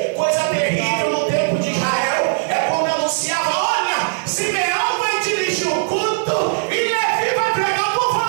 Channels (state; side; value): silent; left; digital silence